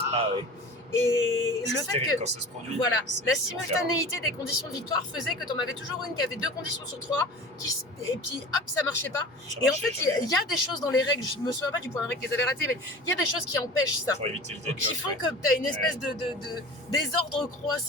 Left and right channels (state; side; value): normal; both; correlation 0.38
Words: ouais. Et le C'est fait terrible que, quand ça se produit. voilà, C'est- la c'est l'enfer. simultanéité des conditions de victoire faisait que tu en avais toujours une qui avait 2 conditions sur 3, et puis hop, ça marchait pas. Ça Et en marchait fait, jamais. il y a des choses dans les règles, je me souviens pas du point de règle qu'ils avaient raté, mais il y a des choses qui empêchent ça. Pour éviter le Qui décote, font ouais. que tu as une espèce de désordre